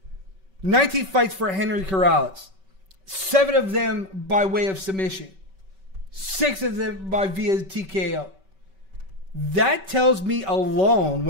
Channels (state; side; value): late; left; 5.2 ms